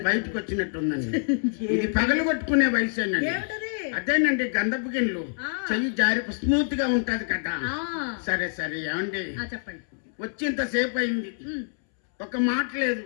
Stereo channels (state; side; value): silent; right; 61 dB below the other